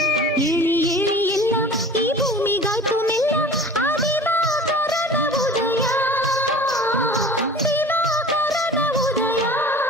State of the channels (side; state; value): both; normal; correlation 0.41